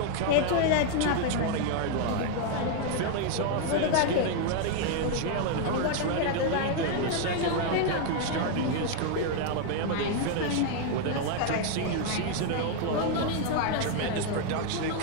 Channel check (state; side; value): different; both; correlation 0.00